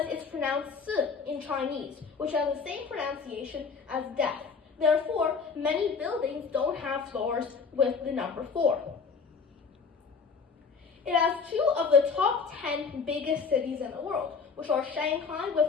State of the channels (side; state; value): right; quieter; 5.3 dB